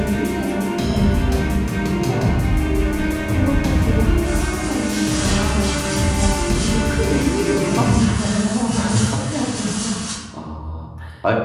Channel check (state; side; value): identical; both; correlation 1.00